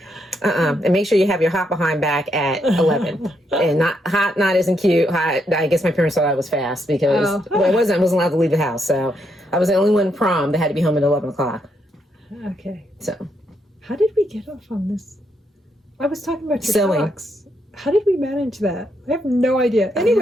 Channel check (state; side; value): normal; both; correlation 0.78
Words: make sure you have your hot behind back at 11, and not isn't cute. Hot. I guess my parents thought I was fast because I wasn't allowed to leave the house. So I was the only one prom that had to be home at 11 o'clock. Okay. So how did we get off on this? I was talking about your sewing. socks. How did we manage that? I have no idea.